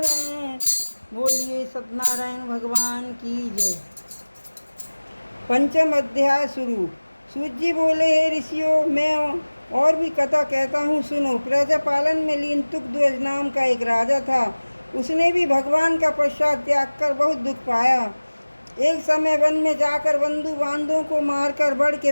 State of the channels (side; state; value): both; inverted; correlation -1.00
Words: बोलिए सत्यनारायण भगवान की जय। पंचम अध्याय शुरू। सूत जी बोले, हे ऋषियों, मैं और भी कथा कहता हूँ, सुनो। प्रजा पालन में लीन तुकध्वज नाम का एक राजा था। उसने भी भगवान का पश्चात त्याग कर बहुत दुख पाया। एक समय वन में जाकर बंधु बांधवों को मारकर बड़ के